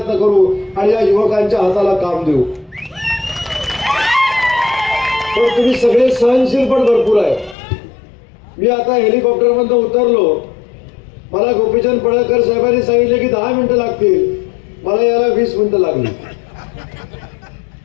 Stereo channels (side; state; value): right; drops out; at 7.6 s